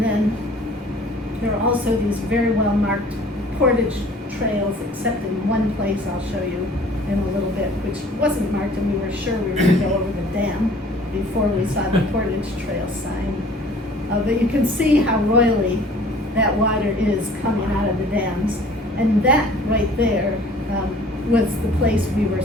then there are also these very well marked portage trails, except in one place I'll show you in a little bit, which wasn't marked, and we were sure we were going to go over the dam before we saw the portage trail sign. But you can see how roily that water is coming out of the dams. And that right there was the place we were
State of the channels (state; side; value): normal; both; correlation 0.51